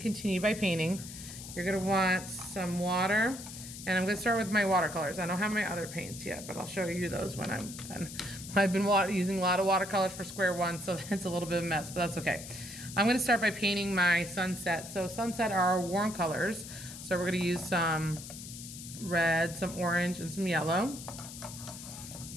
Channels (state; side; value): noise; left; hiss, 12 dB below the sound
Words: by painting. You're gonna want some water, and I'm gonna start with my watercolors. I don't have my other paints yet, but I'll show you those when I'm done. I've been using a lot of watercolors for square one, so it's a little bit of a mess, but that's okay. I'm gonna start by painting my sunset. So sunset are our warm colors. So we're gonna use some red, some orange, and some yellow.